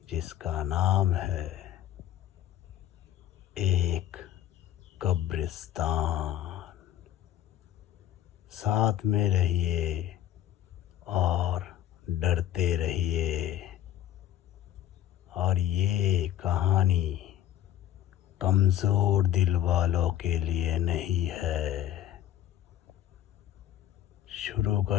जिसका नाम है एक कब्रिस्तान। साथ में रहिए और डरते रहिए। और ये कहानी कमज़ोर दिल वालों के लिए नहीं है। शुरू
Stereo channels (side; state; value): right; quieter; 11.9 dB